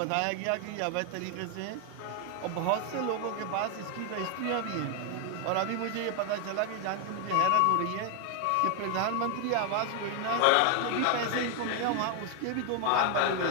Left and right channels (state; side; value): different; both; correlation 0.00